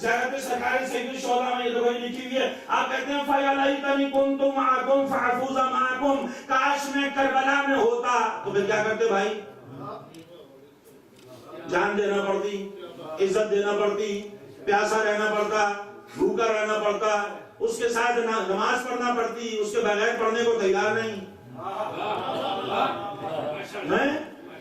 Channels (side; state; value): both; identical; correlation 1.00